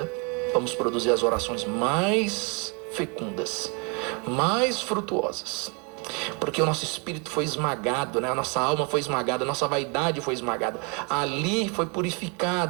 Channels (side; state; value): left; quieter; 33.3 dB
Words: vamos produzir as orações mais fecundas, mais frutuosas. Porque o nosso espírito foi esmagado, né? A nossa alma foi esmagada, a nossa vaidade foi esmagada. Ali foi